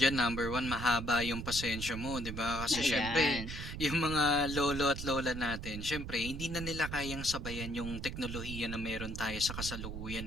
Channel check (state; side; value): noise; right; rumble, 7 dB below the sound